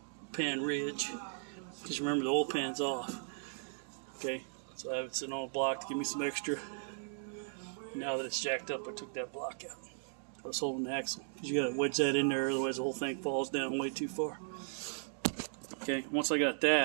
pan ridge. Just remember the oil pan's off. Okay, so I have it sitting on a block to give me some extra. Now that it's jacked up, I took that block out. I was holding the axle. You got to wedge that in there, otherwise the whole thing falls down way too far. Okay, once I got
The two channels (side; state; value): left; silent; digital silence